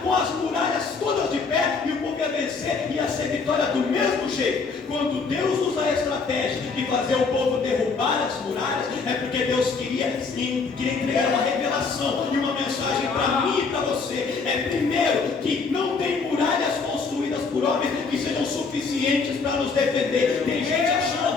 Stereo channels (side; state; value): right; quieter; 4.7 dB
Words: com as muralhas todas de pé, e o povo ia vencer, ia ser vitória do mesmo jeito. Quando Deus usa a estratégia de fazer o povo derrubar as muralhas, é porque Deus queria entregar uma revelação e uma mensagem para mim e para você. É primeiro que não tem muralhas construídas por homens que sejam suficientes para nos defender. Tem gente